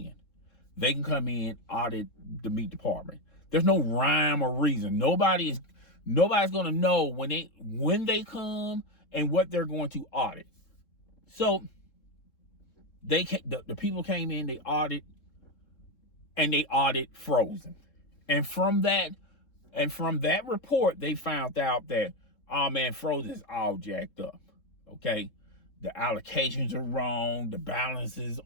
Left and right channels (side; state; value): right; late; 3.7 ms